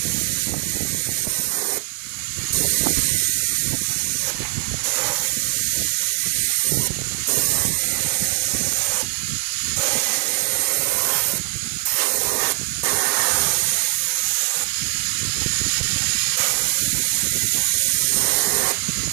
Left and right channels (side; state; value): left; silent; digital silence